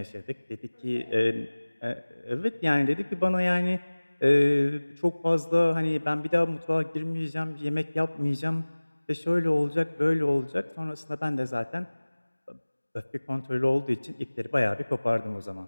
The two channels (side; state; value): both; inverted; correlation -1.00